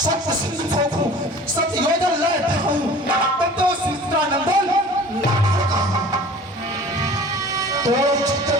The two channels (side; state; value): both; normal; correlation 0.44